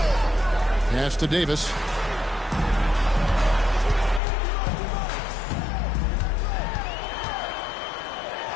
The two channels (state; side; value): drops out; right; at 4.2 s